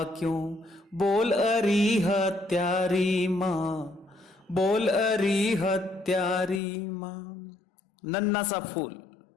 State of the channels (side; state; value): right; drops out; at 6.6 s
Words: क्यों, बोल अरी हत्यारी माँ, बोल अरी हत्यारी माँ। नन्हा सा फूल